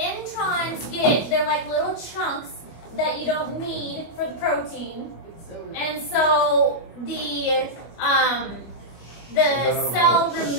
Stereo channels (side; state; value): right; late; 25 ms